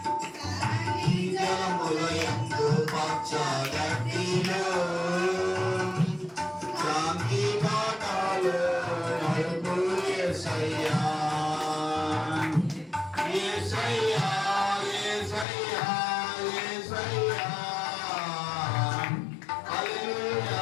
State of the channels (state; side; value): drops out; right; at 15.5 s